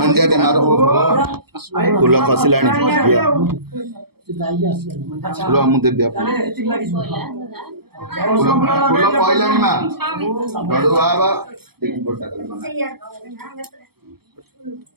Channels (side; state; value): left; late; 0.96 ms